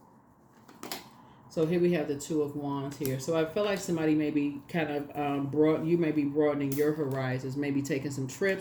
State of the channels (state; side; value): identical; both; correlation 1.00